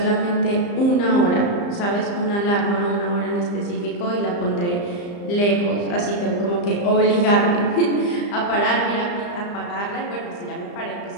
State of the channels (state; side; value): late; right; 34 ms